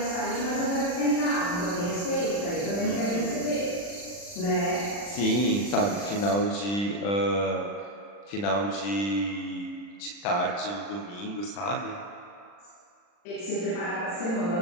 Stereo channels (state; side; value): late; right; 40 ms